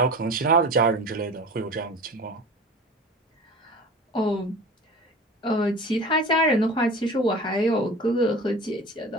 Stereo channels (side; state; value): both; normal; correlation 0.36